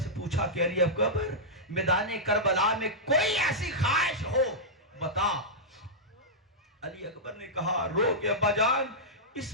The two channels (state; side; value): normal; both; correlation -0.10